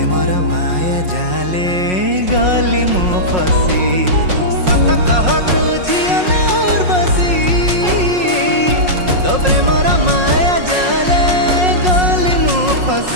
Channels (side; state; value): left; late; 5.5 ms